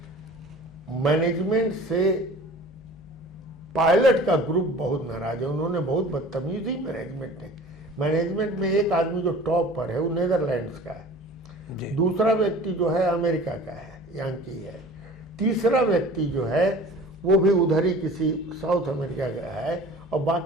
मैनेजमेंट से पायलट का ग्रुप बहुत नाराज है, उन्होंने बहुत बदतमीजी मैनेजमेंट में एक आदमी जो टॉप पर है वो नेदरलैंड्स का है, दूसरा व्यक्ति जो है अमेरिका का है, यांकी है, तीसरा व्यक्ति जो है वो भी उधर ही किसी साउथ अमेरिका का है, और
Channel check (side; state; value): both; normal; correlation 0.43